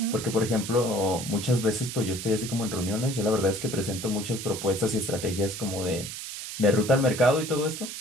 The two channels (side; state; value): right; noise; hiss, 8 dB below the sound